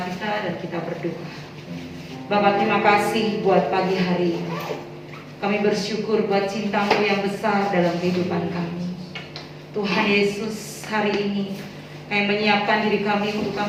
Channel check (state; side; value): identical; both; correlation 1.00